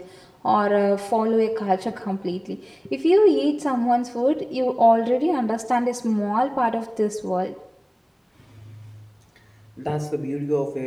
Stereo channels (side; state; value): both; identical; correlation 1.00